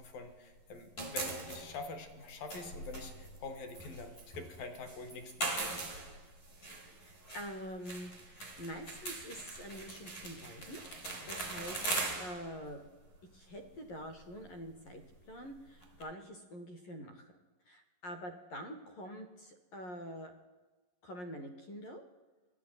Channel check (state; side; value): late; right; 11 ms